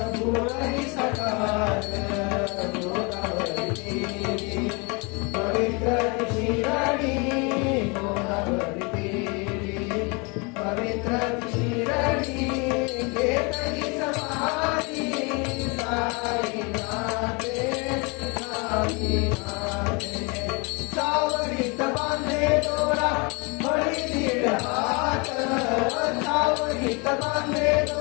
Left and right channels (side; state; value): right; quieter; 30.3 dB